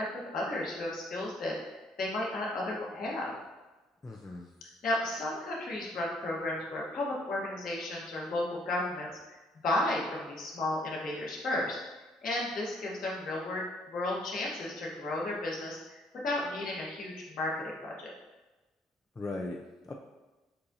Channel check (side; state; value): both; normal; correlation 0.64